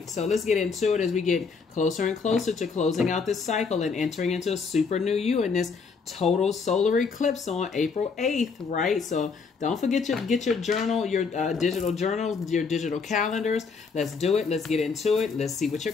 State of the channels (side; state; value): right; quieter; 5.1 dB